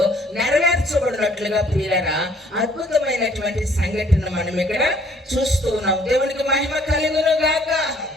నెరవేర్చబడినట్లుగా ప్రియులారా అద్భుతమైనటువంటి సంఘటన మనం ఇక్కడ చూస్తూ ఉన్నాం. దేవునికి మహిమ కలుగును గాక.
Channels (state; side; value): normal; both; correlation 0.61